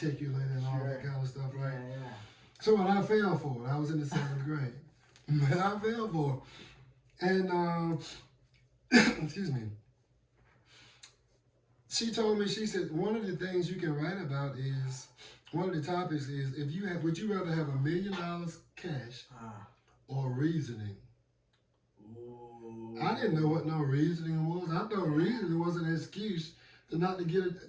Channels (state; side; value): identical; both; correlation 1.00